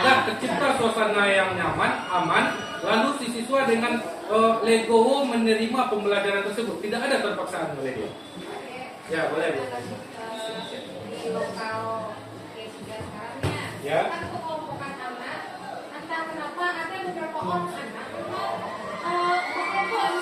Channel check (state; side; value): identical; both; correlation 1.00